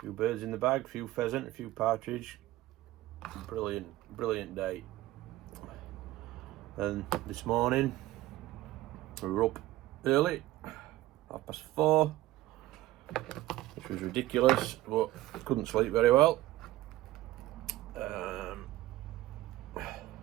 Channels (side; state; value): left; quieter; 16.3 dB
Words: birds in the bag, a few pheasant, a few partridge. Brilliant day. And this morning we were up early, 4:30, which was ridiculous, but couldn't sleep very well.